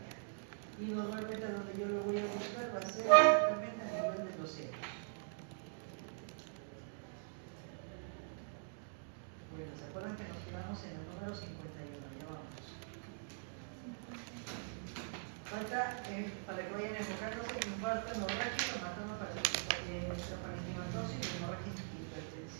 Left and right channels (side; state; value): left; silent; digital silence